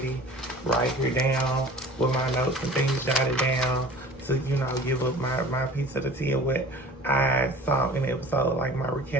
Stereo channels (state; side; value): normal; both; correlation 0.44